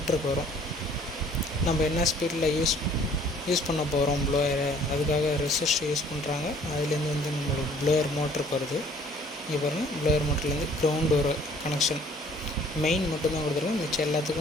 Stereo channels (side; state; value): both; normal; correlation 0.56